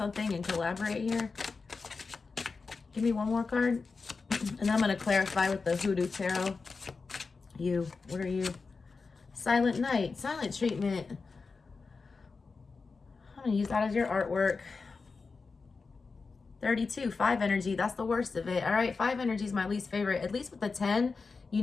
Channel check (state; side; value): quieter; right; 4.5 dB